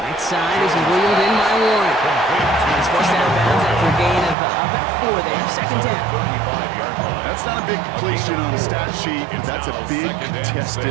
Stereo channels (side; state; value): left; drops out; at 4.4 s